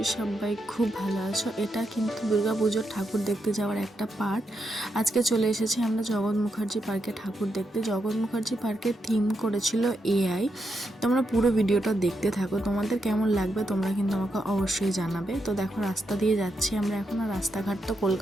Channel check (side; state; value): both; normal; correlation 0.83